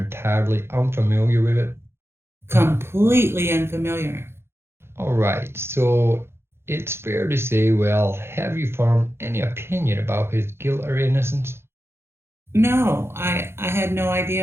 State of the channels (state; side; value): late; left; 0.12 ms